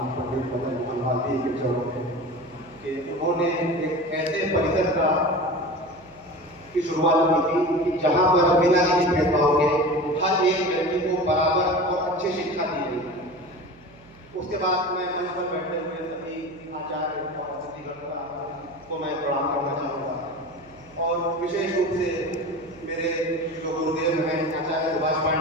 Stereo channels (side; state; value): right; noise; hum, 26 dB below the sound